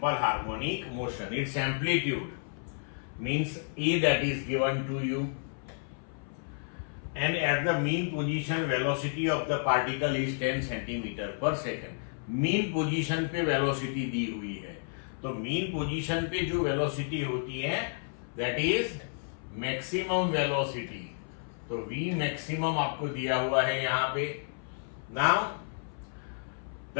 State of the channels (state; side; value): silent; right; 56 dB below the other